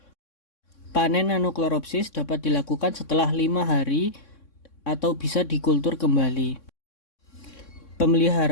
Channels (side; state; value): right; late; 3.6 ms